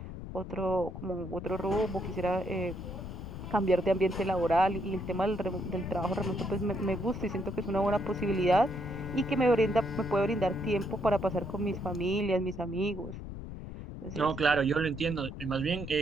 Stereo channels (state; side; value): noise; left; rumble, 9 dB below the sound